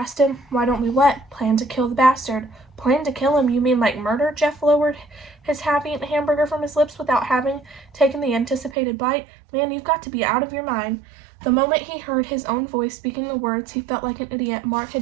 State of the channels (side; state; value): left; drops out; at 8.8 s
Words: him. Why don't we what? Plan to kill the bastard. Plan to kill him? You mean like murder? Jeff lowered his half-eaten hamburger from his lips without having taken the anticipated bite. Man, you've got to be out of your mind. The moment he heard his own voice speaking the words, he felt like an idiot. Mark